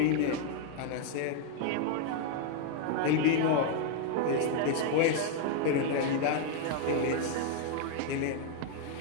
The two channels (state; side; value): different; both; correlation 0.00